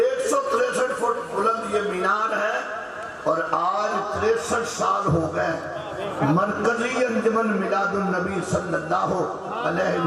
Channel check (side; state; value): both; identical; correlation 1.00